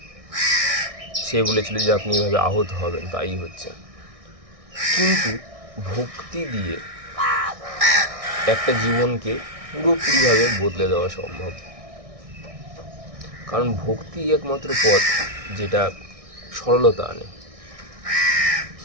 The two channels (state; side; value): late; left; 1.6 ms